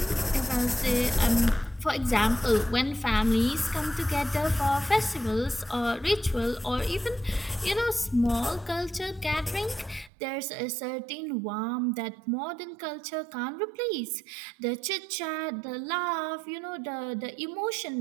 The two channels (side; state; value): left; drops out; at 10.1 s